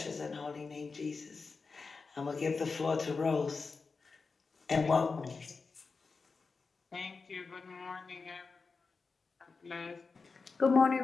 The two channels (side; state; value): right; quieter; 4.5 dB